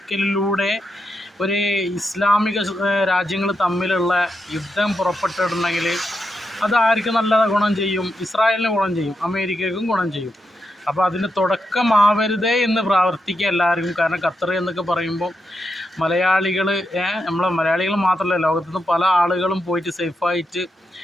ഒരു ഇസ്ലാമിക രാജ്യങ്ങൾ തമ്മിലുള്ള യുദ്ധം പുറപ്പെട്ടിട്ടുണ്ടെങ്കിൽ അത് ആർക്ക് നല്ല ഗുണം ചെയ്യും? ഇസ്രായേലിന് ഗുണം ചെയ്യും, അമേരിക്കയ്ക്കും ഗുണം ചെയ്യും. അപ്പോൾ അതിന് തുടക്കമാവരുതേ എന്ന് പ്രാർത്ഥിക്കുക എല്ലാവർക്കും. കാരണം ഖത്തർ എന്നൊക്കെ പറയുമ്പോൾ മലയാളികൾ, നമ്മളെ മലയാളികൾ മാത്രമല്ല, ലോകത്തുനിന്ന് പല ആളുകളും പോയിട്ട് സേഫായിട്ട്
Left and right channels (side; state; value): both; normal; correlation 0.84